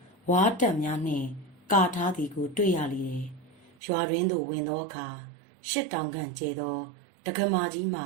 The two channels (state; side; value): drops out; left; at 3.8 s